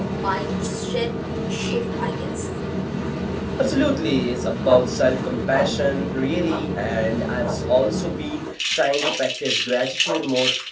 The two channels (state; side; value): identical; both; correlation 1.00